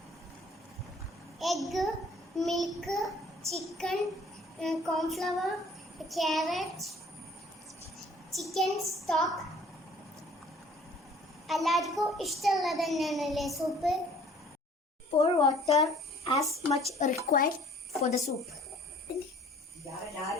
egg, milk, chicken, cornflour, carrot, chicken stock. എല്ലാവർക്കും ഇഷ്ടമുള്ളത് തന്നെയാണല്ലേ soup. Pour water as much required for the soup.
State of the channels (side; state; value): both; normal; correlation 0.54